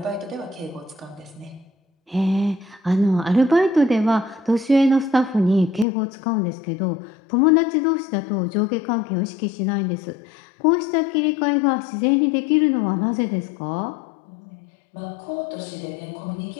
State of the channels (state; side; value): drops out; right; at 5.9 s